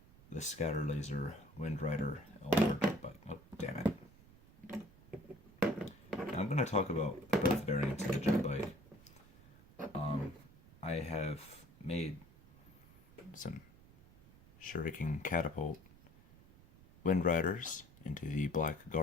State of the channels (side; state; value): right; noise; rumble, 23 dB below the sound